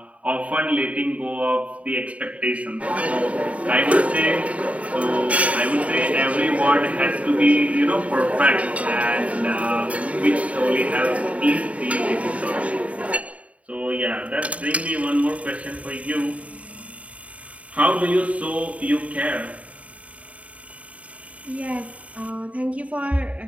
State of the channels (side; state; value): left; late; 0.067 ms